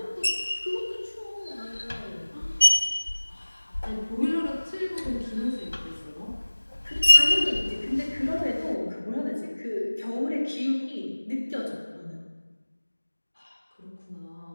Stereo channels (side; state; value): both; inverted; correlation -1.00